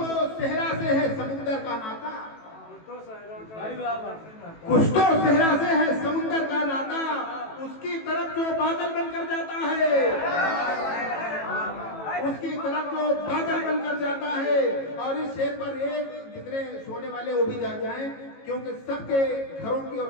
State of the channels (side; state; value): right; late; 18 ms